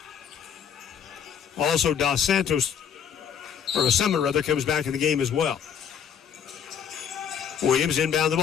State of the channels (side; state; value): right; quieter; 7.9 dB